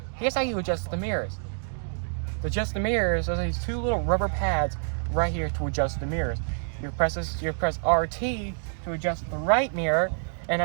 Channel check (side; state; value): left; silent; 60 dB below the other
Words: here's how you adjust the mirrors. To adjust the mirrors, there's these 2 little rubber pads right here to adjust the mirrors. You press RT to adjust the right mirror, and